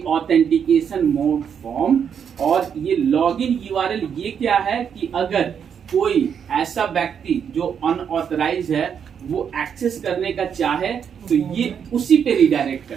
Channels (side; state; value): left; quieter; 7.6 dB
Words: ऑथेंटिकेशन मोड फॉर्म, और ये लॉगिन यूआरएल ये क्या है कि अगर कोई ऐसा व्यक्ति जो अनऑथराइज है वो एक्सेस करने का चाहे तो ये उसी पे रिडायरेक्ट